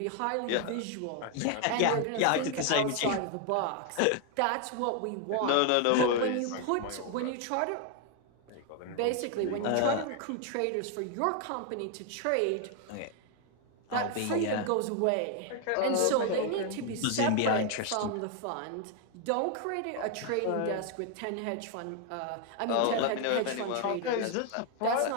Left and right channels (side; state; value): both; different; correlation 0.00